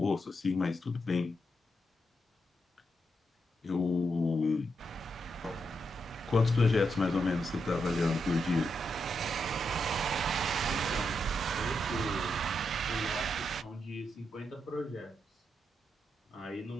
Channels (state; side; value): normal; both; correlation 0.83